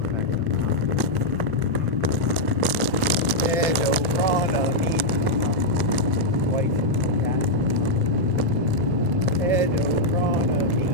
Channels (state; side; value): normal; both; correlation -0.04